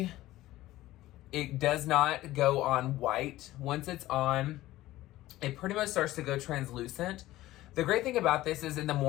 it does not go on white. Once it's on, it pretty much starts to go translucent. The great thing about this is in the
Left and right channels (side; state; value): right; quieter; 16.2 dB